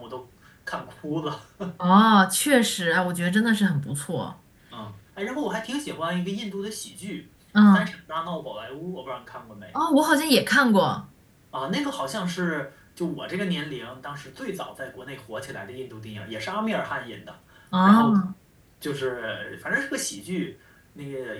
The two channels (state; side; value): identical; both; correlation 1.00